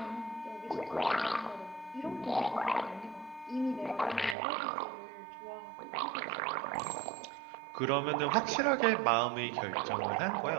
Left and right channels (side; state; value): left; drops out; at 4.4 s